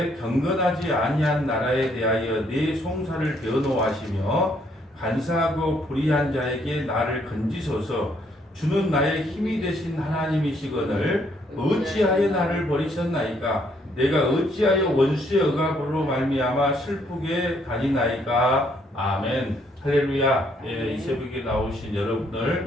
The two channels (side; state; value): both; normal; correlation 0.69